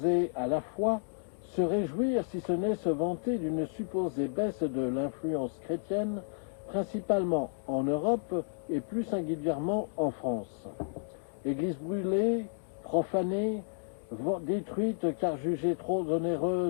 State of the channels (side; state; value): right; silent; digital silence